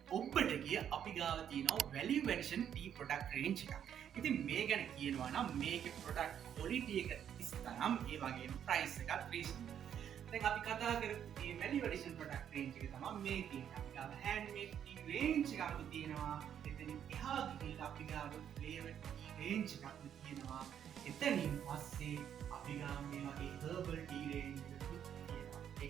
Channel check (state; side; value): quieter; left; 9.2 dB